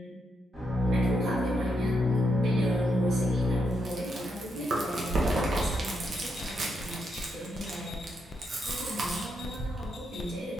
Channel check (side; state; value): both; normal; correlation 0.81